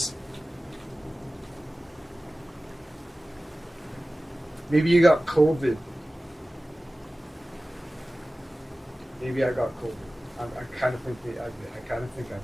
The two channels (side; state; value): both; normal; correlation 0.96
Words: Maybe you got COVID. Maybe I got COVID. I kind of think I did. I kind of think I